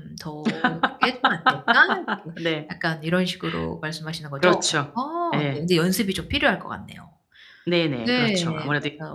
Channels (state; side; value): identical; both; correlation 1.00